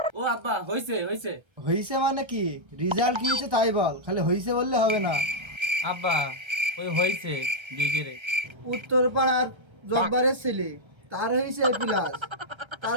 ও আব্বা হইছে হইছে। হইছে মানে কি? রেজাল্ট কি হয়েছে তাই বল, খালি হইছে বললে হবে না। আব্বা ওই হইছে বিগেরে। উত্তর পাড়ার জব্বারের ছেলে তার হয়েছে এ প্লাস,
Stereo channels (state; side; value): late; left; 1.3 ms